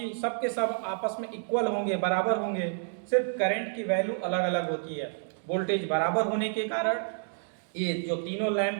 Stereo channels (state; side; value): silent; left; digital silence